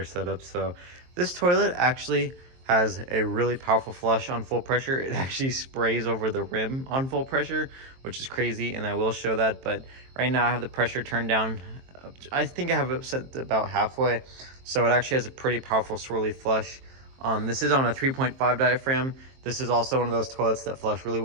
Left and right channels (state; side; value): late; left; 23 ms